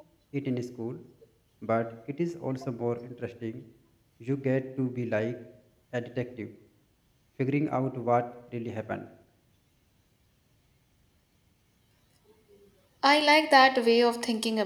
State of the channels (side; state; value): both; identical; correlation 1.00